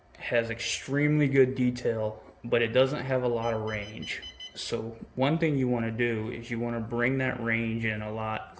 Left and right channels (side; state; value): both; identical; correlation 1.00